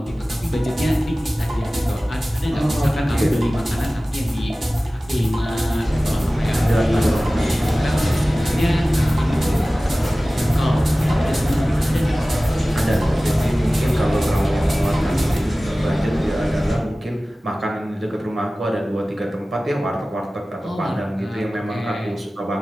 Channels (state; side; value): normal; both; correlation 0.97